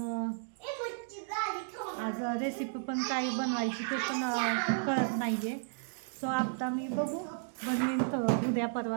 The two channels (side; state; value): left; silent; digital silence